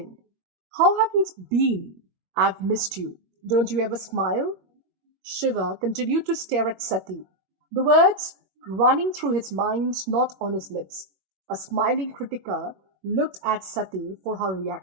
How have you been? I've missed you. Don't you ever smile?" Shiva continued to stare at Sati, the words running through his mind, not on his lips. A smiling Kritika looked at Sati for her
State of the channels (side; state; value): left; late; 21 ms